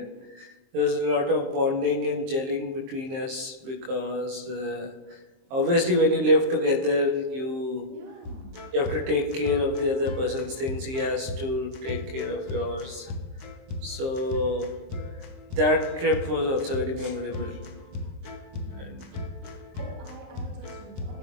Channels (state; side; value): late; left; 23 ms